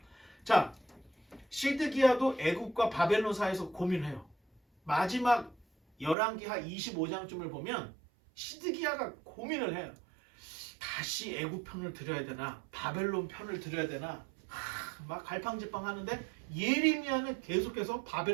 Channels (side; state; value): left; drops out; at 6.2 s